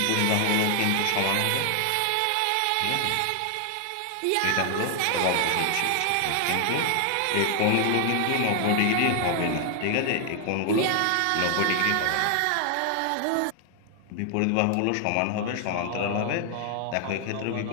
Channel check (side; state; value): both; different; correlation 0.00